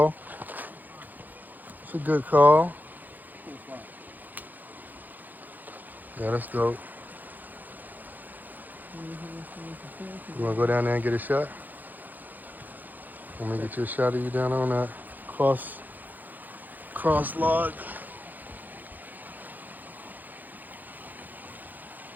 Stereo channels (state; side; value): late; left; 0.085 ms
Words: It's a good call. Yeah, that's dope. You wanna go down there and get a shot? Let me get you a shot of you down on that cross log.